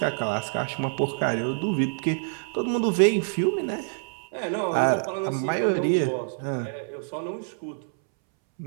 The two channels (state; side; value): silent; left; 61 dB below the other